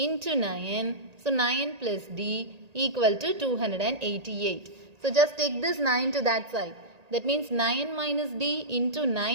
9. So 9 plus D equal to 288. So just take this 9 to that side. That means 9 minus D into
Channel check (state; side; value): late; left; 1.9 ms